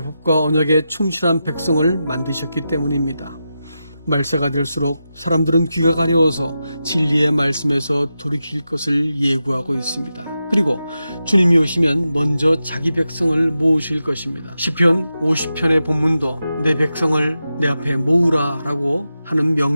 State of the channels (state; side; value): inverted; both; correlation -0.90